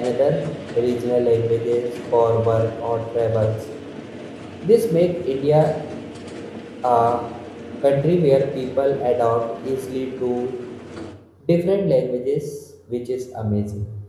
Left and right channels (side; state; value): both; identical; correlation 1.00